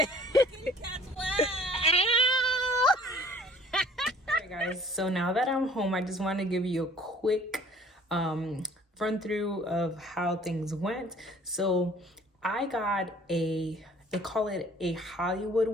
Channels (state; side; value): normal; both; correlation 0.53